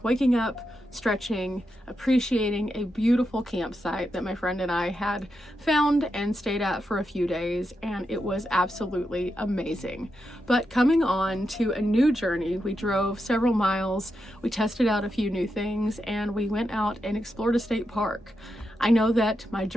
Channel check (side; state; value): both; normal; correlation 0.86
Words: waking up, stretching, appreciating a beautiful campsite that my friend and I had found and stayed at for a few days, and it was absolutely amazing. But coming on to a new journey, we drove several miles, we tested out a few new things, and we went out and explored a state park. I know that my